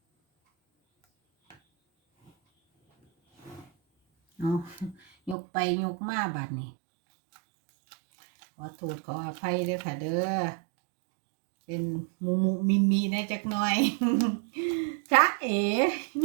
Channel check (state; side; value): drops out; left; at 5.4 s